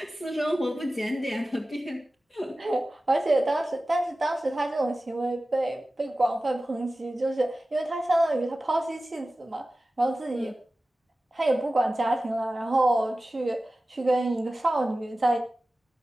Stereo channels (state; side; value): normal; both; correlation 0.96